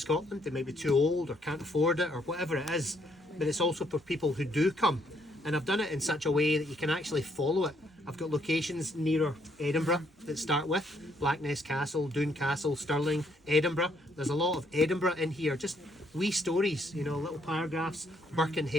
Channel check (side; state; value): both; normal; correlation 0.70